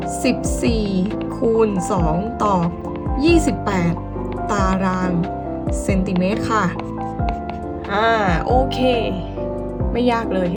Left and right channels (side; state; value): both; identical; correlation 1.00